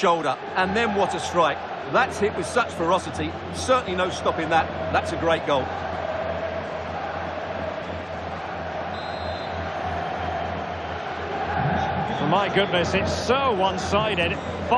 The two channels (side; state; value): both; identical; correlation 1.00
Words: And then what a strike. That's hit with such ferocity. Certainly no stopping that. That's a great goal. My goodness, it's so one-sided.